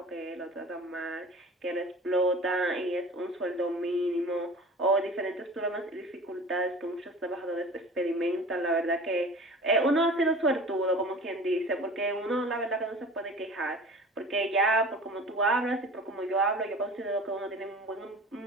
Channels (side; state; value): both; normal; correlation 0.40